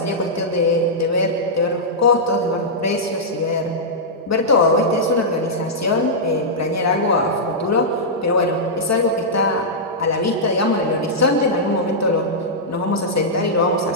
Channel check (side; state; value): both; normal; correlation -0.10